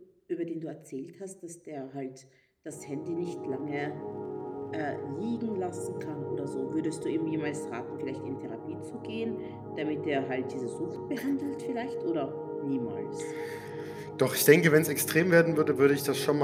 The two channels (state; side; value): identical; both; correlation 1.00